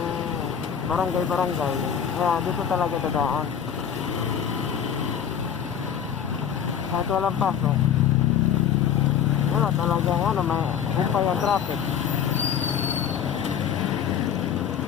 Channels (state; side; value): quieter; right; 8.4 dB